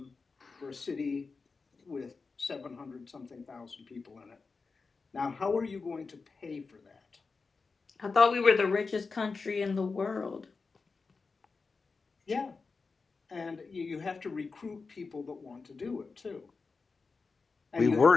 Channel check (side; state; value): right; quieter; 4.4 dB